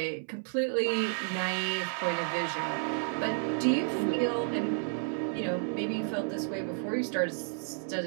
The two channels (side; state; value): left; silent; 57 dB below the other